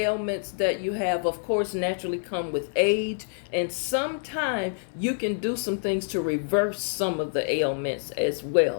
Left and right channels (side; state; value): right; silent; digital silence